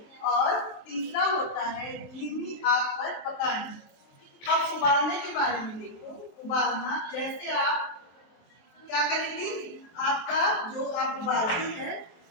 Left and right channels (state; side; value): late; right; 24 ms